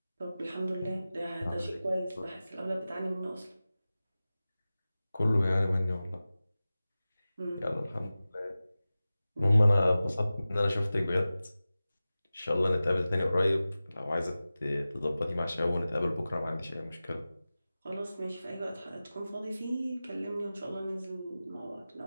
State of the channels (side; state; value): both; inverted; correlation -0.96